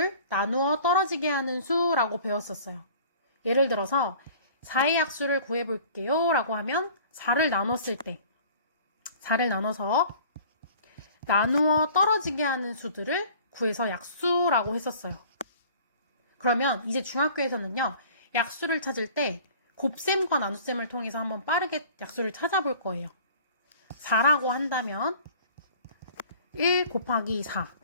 나누어 떨어지게 하는 수라고 배웠었어요. 예를 들어서 4의 약수를 구해볼게요 라고 하면 4를 나눴을 때 4를 나눠서 나누어 떨어지게 하는 수들을 구해서 약수라고 했었어요. 그러면 이제 중학교에서는요, 약수를 찾을 때 곱셈과 나눗셈을 통해서 한번 빠르게 약수를 찾아볼 거예요. 4라고 한다면 1 곱하기 4.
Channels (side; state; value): both; inverted; correlation -0.48